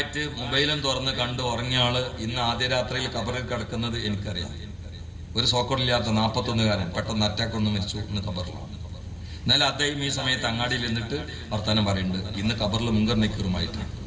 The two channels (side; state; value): both; identical; correlation 1.00